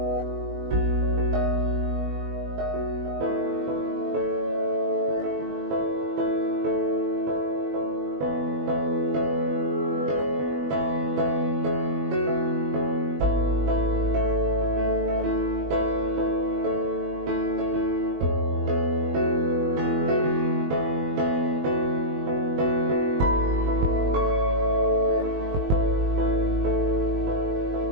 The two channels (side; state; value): left; late; 21 ms